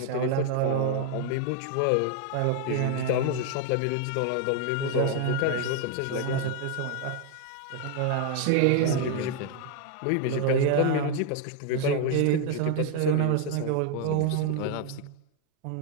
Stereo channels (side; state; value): both; different; correlation 0.00